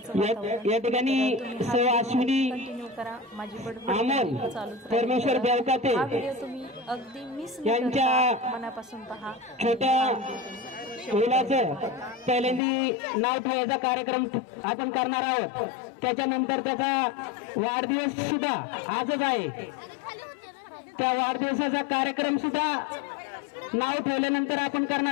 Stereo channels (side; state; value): right; drops out; at 12.6 s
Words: वातावरण। या ठिकाणी अश्विनी कंटिन्यू करा, माझी अमोल चालूच परमेश्वर देवकाते हा व्हिडिओ तुम्ही अगदी मिस न करता मनापासून पहा। छोट्या मुलाचं पहिल्यांदी नाव ठेवायचा कार्यक्रम आपण करणार आहोत, त्याच्यानंतर त्याचा वाढदिवस सुद्धा आजच आहे, त्या वाढदिवसाचा कार्यक्रम सुद्धा नाव ठेवल्यानंतर आपण